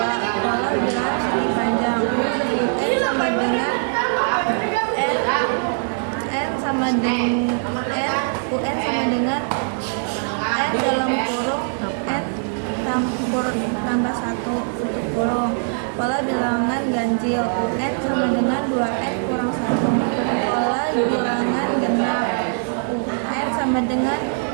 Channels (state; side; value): silent; left; 58 dB below the other